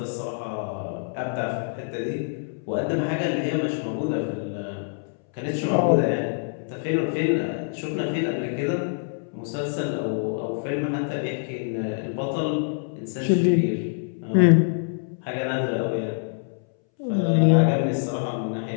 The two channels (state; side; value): silent; right; 61 dB below the other